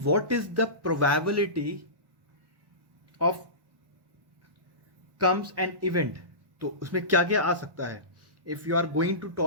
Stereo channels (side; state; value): left; late; 1.1 ms